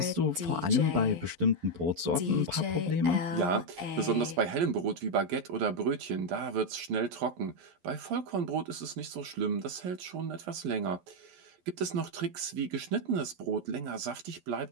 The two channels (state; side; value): late; left; 12 ms